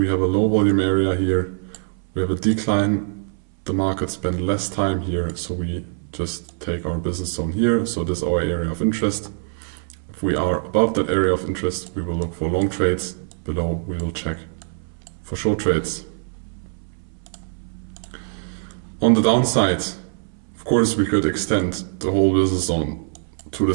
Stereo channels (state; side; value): silent; left; 61 dB below the other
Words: have a low volume area here. We have a decline. The market spend less time here, so we just take our business zone here. So this is our area of interest. If we are above that area of interest, we will look for long trades. Below, we will check for short trades. On the downside, of course, we could extend the whole business zone to